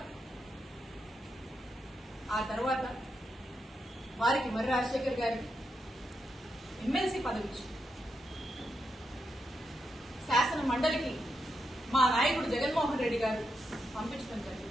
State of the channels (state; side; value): normal; both; correlation 0.84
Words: తర్వాత వారికి మరి రాజశేఖర్ గారికి ఎమ్మెల్సీ పదవి ఇచ్చింది. శాసన మండలికి మా నాయకుడు జగన్మోహన్ రెడ్డి గారు పంపించడం